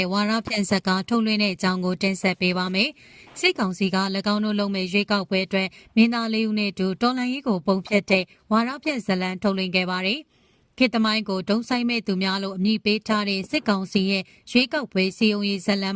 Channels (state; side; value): identical; both; correlation 1.00